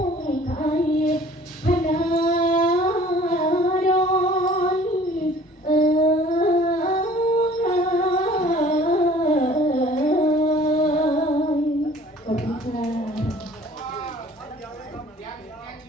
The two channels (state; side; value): normal; both; correlation 0.51